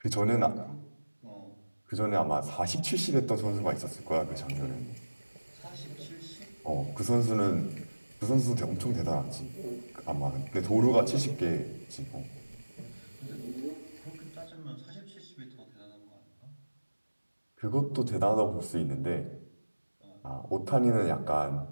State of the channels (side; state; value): both; inverted; correlation -1.00